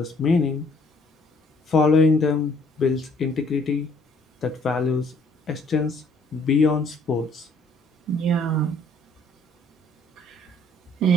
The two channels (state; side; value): normal; both; correlation 0.62